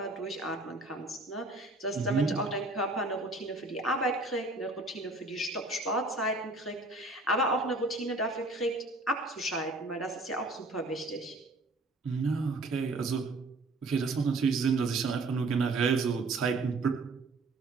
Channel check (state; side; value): quieter; left; 3.0 dB